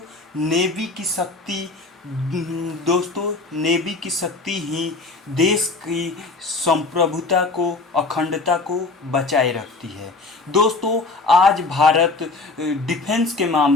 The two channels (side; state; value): right; quieter; 3.6 dB